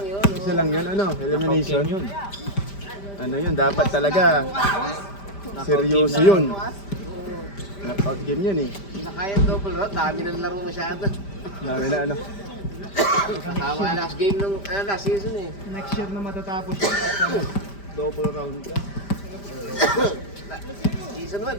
Isa lang yun, ano? Elimination. Ano yun? Dapat talaga seryoso yun. Knockout game yun eh. Hindi na kaya double round, dami ng laro masyado. Dami na ano. Tama last game nung last season eh. Next year na matatapos yun. Double round ka. Season 1,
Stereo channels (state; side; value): late; right; 5.1 ms